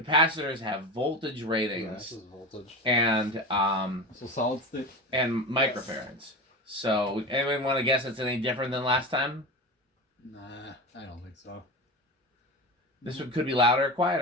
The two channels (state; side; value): normal; both; correlation 0.26